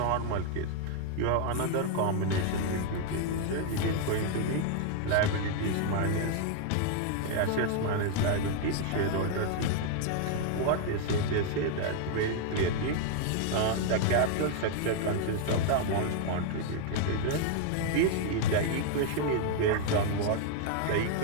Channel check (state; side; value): different; both; correlation 0.00